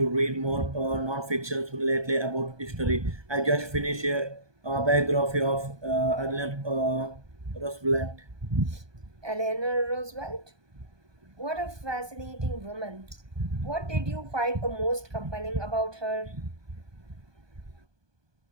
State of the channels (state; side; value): late; left; 1.2 ms